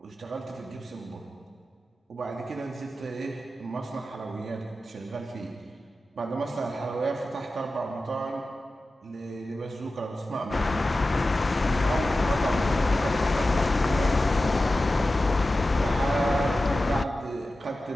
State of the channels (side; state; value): both; normal; correlation 0.94